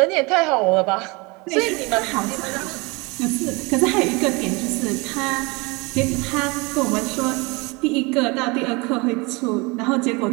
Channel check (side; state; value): left; quieter; 26.8 dB